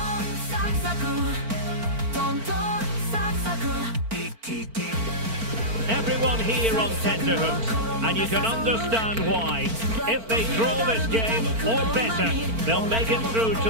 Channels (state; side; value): late; left; 4.4 ms